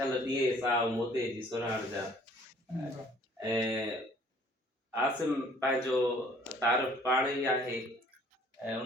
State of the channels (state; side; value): normal; both; correlation 0.56